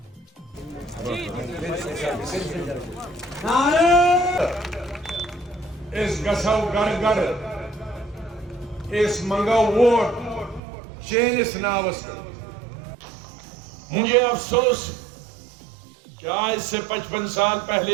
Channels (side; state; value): left; drops out; at 10.6 s